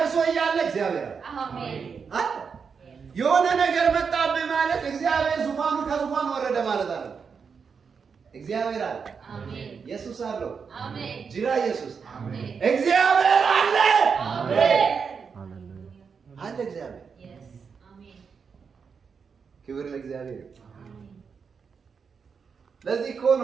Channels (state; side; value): quieter; left; 5.9 dB